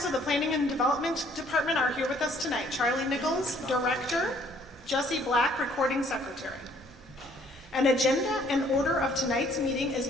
of the Planning and Development Department are here with us tonight. Charlie Nichols, Director. Jesse Black, Recording Secretary. An agenda and order of tonight's meeting is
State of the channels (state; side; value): normal; both; correlation 0.62